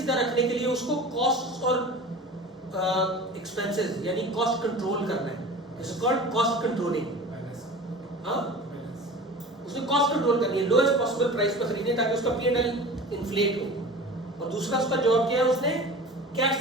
रखने के लिए उसको कॉस्ट और एक्सपेंसेस यानी कॉस्ट कंट्रोल करना है। It's called cost controlling. हाँ, उसने कॉस्ट कंट्रोल करनी है, लोएस्ट पॉसिबल प्राइस पर खरीदनी ताकि उसका P&L इन्फ्लेट हो। और दूसरा उसका जॉब क्या है, उसने कैश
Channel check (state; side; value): normal; both; correlation 0.37